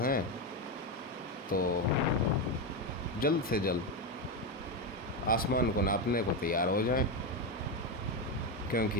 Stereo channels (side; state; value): both; normal; correlation 0.11